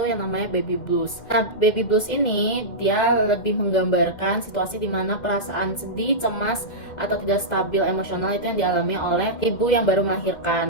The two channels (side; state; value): right; late; 2.1 ms